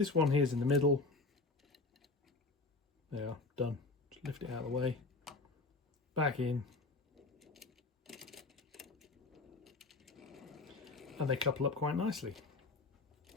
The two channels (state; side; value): quieter; right; 3.5 dB